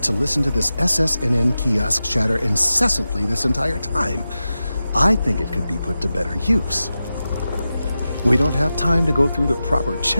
to listen to this SSNN kiosk chatter incessantly this entire time. I think it could be put to better use. We don't have time to go through the proper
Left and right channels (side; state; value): both; inverted; correlation -0.93